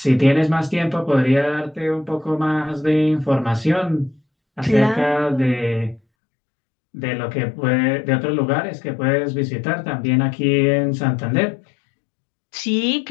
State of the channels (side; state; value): right; drops out; at 6.0 s